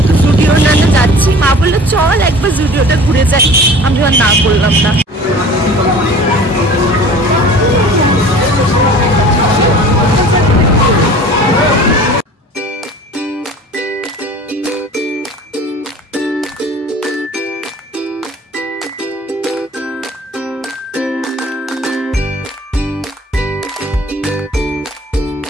জুডিও যাচ্ছি, মা বললো চল একবার জুডিওটা ঘুরে যাই, আমি আর না বললাম না।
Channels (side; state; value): both; normal; correlation 0.44